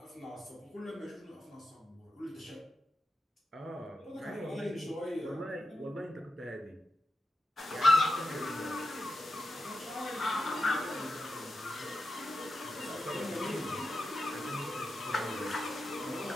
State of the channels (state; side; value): normal; both; correlation 0.90